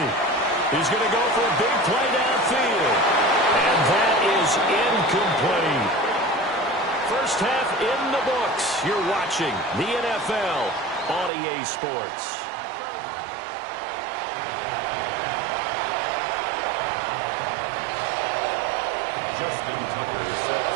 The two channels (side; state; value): left; drops out; at 11.3 s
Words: He's going to go for a big play downfield. And that is incomplete. First half in the books. You're watching the NFL on EA Sports. Justin Tucker set